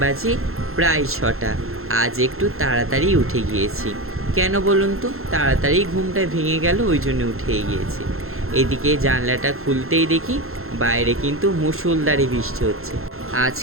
বাজে প্রায় 6টা। আজ একটু তাড়াতাড়ি উঠে গিয়েছি। কেন বলুন তো? তাড়াতাড়ি ঘুমটা ভেঙে গেল, ওই জন্য উঠে গিয়েছি। এদিকে জানলাটা খুলতেই দেখি বাইরে কিন্তু মুষলধারে বৃষ্টি হচ্ছে। আজ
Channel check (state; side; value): late; left; 0.62 ms